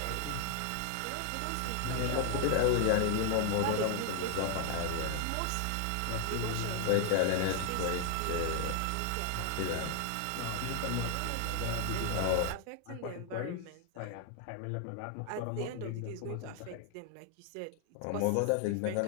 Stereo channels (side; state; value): both; different; correlation 0.00